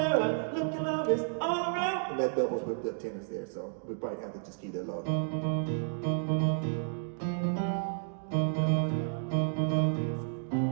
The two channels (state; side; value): silent; left; digital silence